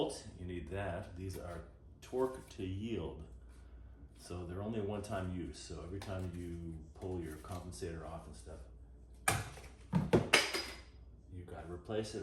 You need that. These are torque to yield. So they're only a one-time use. So every time you pull your compensator off and stuff, you gotta replace it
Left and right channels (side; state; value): both; identical; correlation 1.00